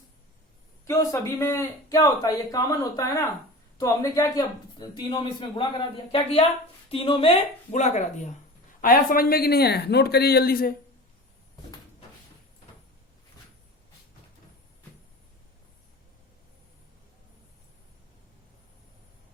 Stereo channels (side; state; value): both; normal; correlation 0.35